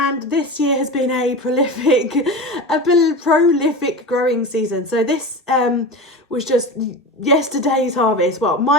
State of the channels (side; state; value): both; normal; correlation 0.28